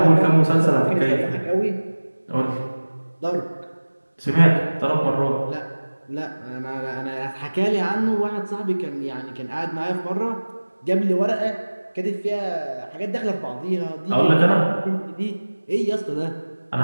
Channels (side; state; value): both; inverted; correlation -1.00